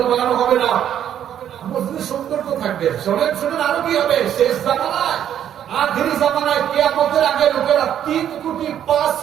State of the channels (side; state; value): left; quieter; 10.1 dB